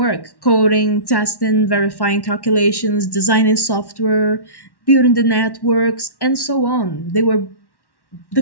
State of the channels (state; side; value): late; right; 1.1 ms